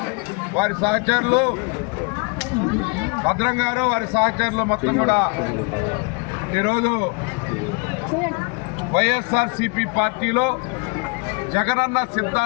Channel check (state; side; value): quieter; right; 31.2 dB